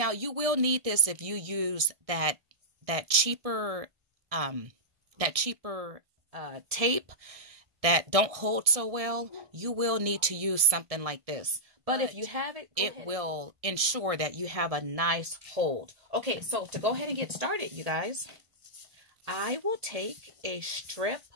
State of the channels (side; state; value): left; late; 1.6 ms